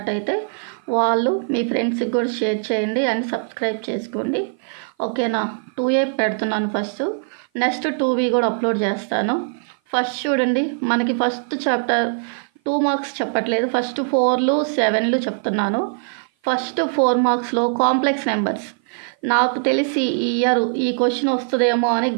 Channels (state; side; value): silent; left; 55 dB below the other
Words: వాళ్ళు మీ ఫ్రెండ్స్కి కూడా షేర్ చేయండి అండ్ సబ్స్క్రైబ్ చేసుకోండి. ఓకేనా, 2A పెడుతున్నాను ఫస్ట్, నెక్స్ట్ 2B కూడా అప్లోడ్ చేస్తాను. ఫస్ట్ చూడండి, మనకి ఫస్ట్ చాప్టర్ 2 మార్క్స్ చెప్పట్లేదు, ఫస్ట్ 4లు 7లు చెప్తున్నాను. ఫస్ట్ 4 మార్క్స్లో కాంప్లెక్స్ నెంబర్స్. నాకు తెలిసి ఈ ఇయర్ ఈ క్వశ్చన్ వస్తుందేమో అని